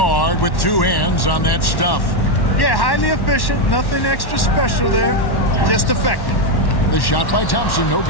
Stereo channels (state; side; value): late; right; 1.1 ms